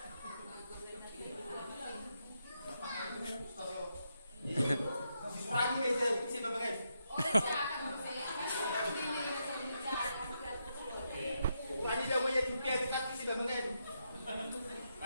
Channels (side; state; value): both; inverted; correlation -0.82